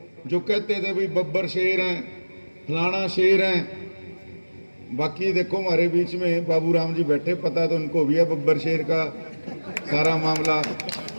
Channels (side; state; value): both; inverted; correlation -1.00